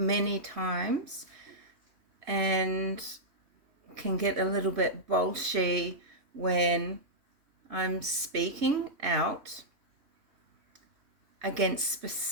times and can get a little bit bolshy when I'm speaking out against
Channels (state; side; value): late; left; 3.1 ms